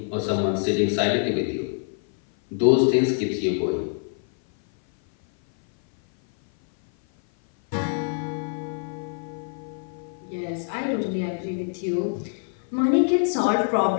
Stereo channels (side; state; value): right; silent; 57 dB below the other